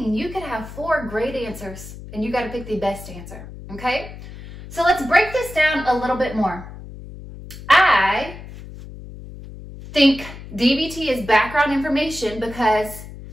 you could have 4 great answers and you got to pick the best answer, okay? So let's break this down a little bit more. I think DVT is background information because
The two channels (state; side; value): noise; left; hum, 14 dB below the sound